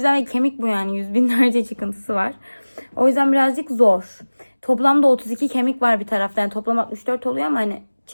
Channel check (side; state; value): both; inverted; correlation -1.00